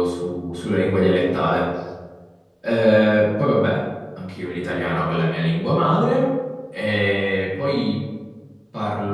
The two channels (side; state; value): both; identical; correlation 1.00